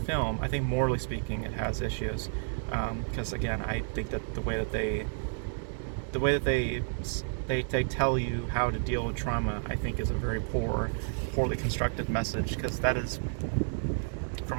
I think morally speaking, it has issues. Because again, I think that the way that they tell you how to deal with trauma, I think is a very poorly constructed message. Because that is,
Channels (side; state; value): left; silent; digital silence